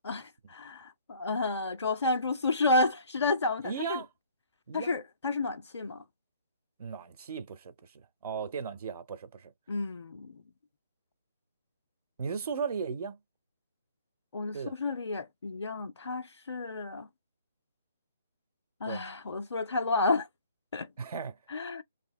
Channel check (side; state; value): both; inverted; correlation -0.54